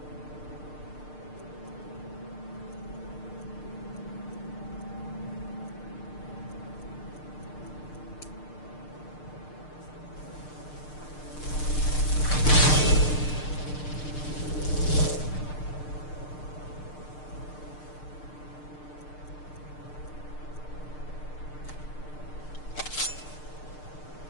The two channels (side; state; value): right; late; 6.6 ms